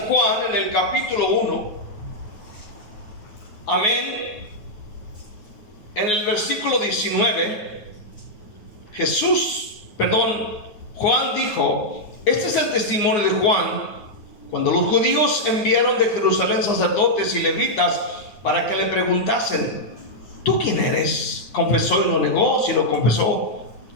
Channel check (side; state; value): right; late; 9.5 ms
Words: Juan, en el capítulo 1, amén, en el versículo 19, Juan dijo: este es el testimonio de Juan, cuando los judíos enviaron de Jerusalén sacerdotes y levitas para que le preguntasen: ¿tú quién eres? Confesó y no negó, sino confesó